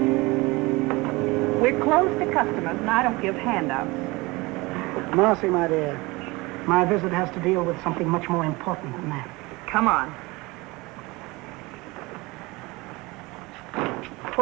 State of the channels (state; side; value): quieter; left; 23.1 dB